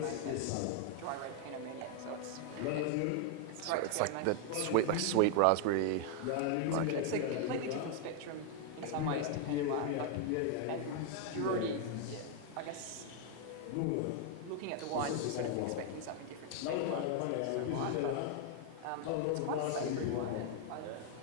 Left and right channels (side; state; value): both; different; correlation 0.00